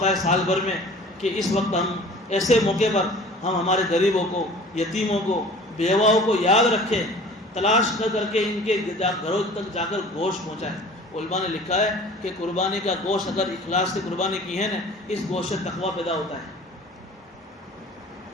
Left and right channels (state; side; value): normal; both; correlation 0.45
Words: ہے سال بھر میں کہ اس وقت ہم ایسے موقع پر ہم ہمارے غریبوں کو, یتیموں کو, بیواؤں کو یاد رکھیں, تلاش کر کے ان کے گھروں تک جا کر گوشت پہنچائیں. علماء نے لکھا ہے کہ قربانی کا گوشت اگر اخلاص سے قربانی کی ہے نا، اس گوشت سے تقویٰ پیدا ہوتا ہے.